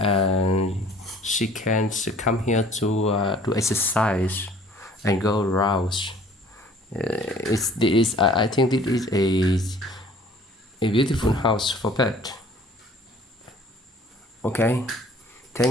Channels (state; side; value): normal; both; correlation 0.53